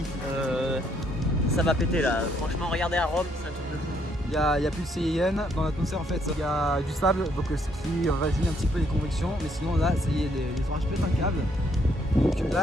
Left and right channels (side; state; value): both; normal; correlation 0.70